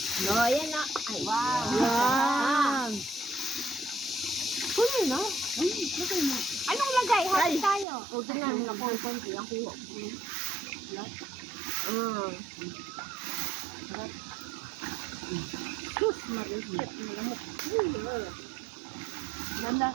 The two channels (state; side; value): drops out; left; at 7.9 s